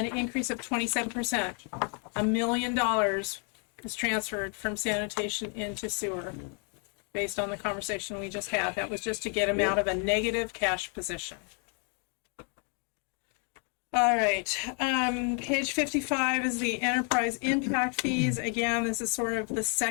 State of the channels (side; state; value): right; quieter; 39.4 dB